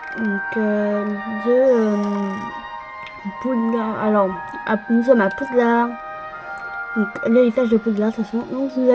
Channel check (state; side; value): identical; both; correlation 1.00